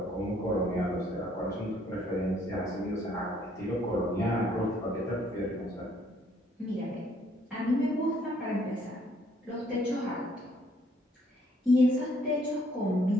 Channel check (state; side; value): normal; both; correlation 0.65